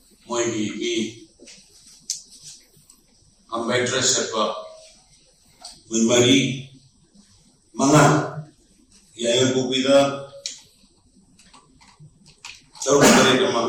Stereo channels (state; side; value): identical; both; correlation 1.00